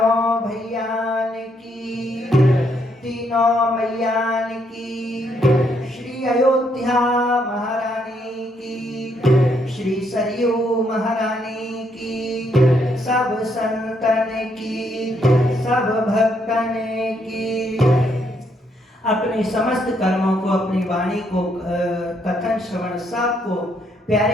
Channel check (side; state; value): both; normal; correlation 0.73